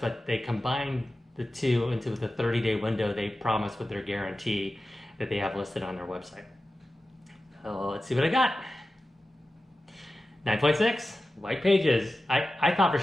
they combined the two into the 30-day window they promised with their guarantee that they have listed on their website. So let's see what I got. 9.6. White pages. I thought for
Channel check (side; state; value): both; normal; correlation 0.94